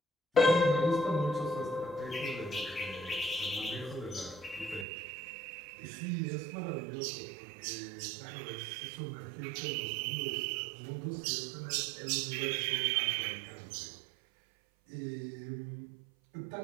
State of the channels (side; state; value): left; drops out; at 4.9 s